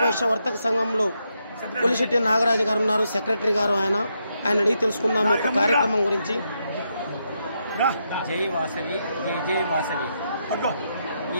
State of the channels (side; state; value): both; inverted; correlation -0.81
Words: వర్తక సంఘంలో కొలిశెట్టి నాగరాజు గారు ఉన్నారు, సెక్రటరీ గారు. ఆయన అడిగి తెలుసుకుందాం యొక్క కార్యక్రమం గురించి. జై వాసవి, జై జై వాసవి.